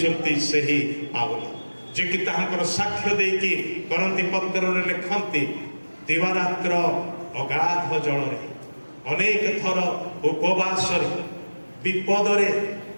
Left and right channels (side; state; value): both; inverted; correlation -1.00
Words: ସେହି ପାଉଲ, ଯିଏକି ତାହାଙ୍କର ସାକ୍ଷ୍ୟ ଦେଇକି କରନ୍ତି ପତ୍ରରେ ଲେଖନ୍ତି, ଦିବାରାତ୍ର ଅଗାଧ ଜଳରେ, ଅନେକ ଥର ଉପବାସରେ, ବିପଦରେ,